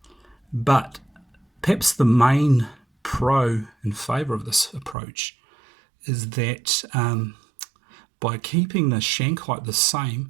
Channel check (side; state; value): left; drops out; at 5.0 s